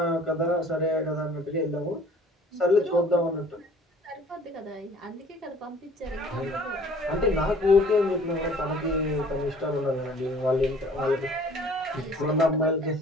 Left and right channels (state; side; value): normal; both; correlation 0.52